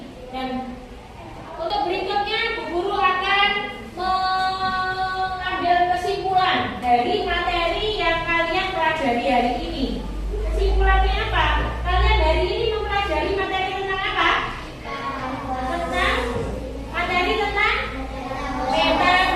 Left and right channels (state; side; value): identical; both; correlation 1.00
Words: Dan untuk berikutnya, Bu Guru akan mengambil kesimpulan dari materi yang kalian pelajari hari ini. Kesimpulannya apa? Kalian hari ini mempelajari materi tentang apa? Tentang materi tentang